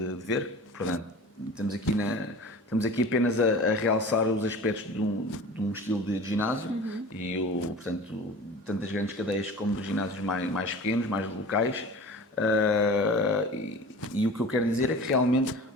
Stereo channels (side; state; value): both; normal; correlation 0.38